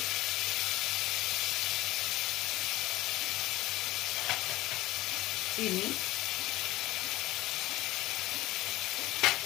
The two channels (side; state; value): right; quieter; 17.4 dB